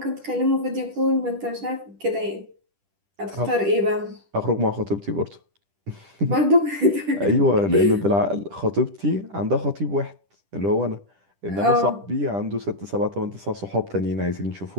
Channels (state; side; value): late; left; 10 ms